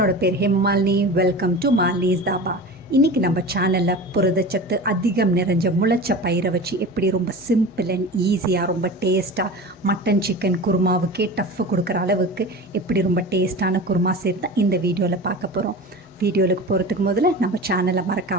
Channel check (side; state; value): both; normal; correlation 0.33